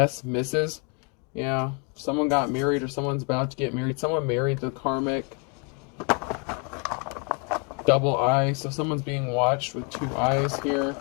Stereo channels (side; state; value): right; quieter; 35.9 dB